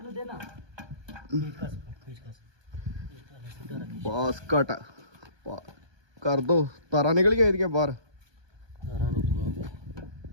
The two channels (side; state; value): left; late; 1.2 ms